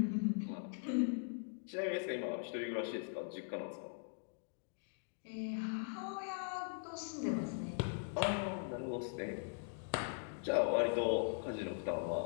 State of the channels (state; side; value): silent; right; digital silence